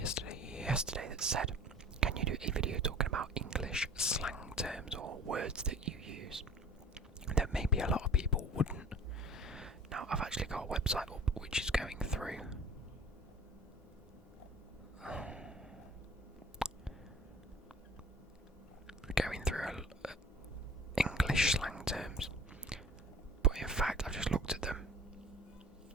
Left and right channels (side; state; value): both; normal; correlation 0.45